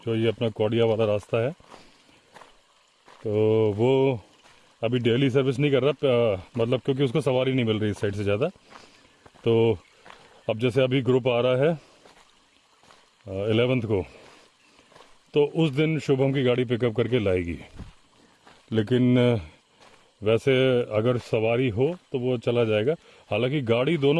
जो ये अपना कौड़िया वाला रास्ता है। तो वो अभी डेली सर्विस नहीं कर रहा, मतलब क्योंकि उसको सवारी नहीं मिल रही इस साइड से ज़्यादा। तो अब जैसे अभी ग्रुप आ रहा है 11th को, तो उस दिन शुभम की गाड़ी पिकअप करके लाएगी। लेकिन वैसे अगर सवारी हो तो वो चला जाएगा। हालांकि गाड़ी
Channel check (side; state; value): both; identical; correlation 1.00